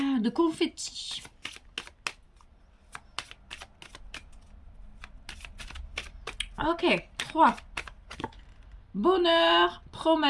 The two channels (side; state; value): both; identical; correlation 1.00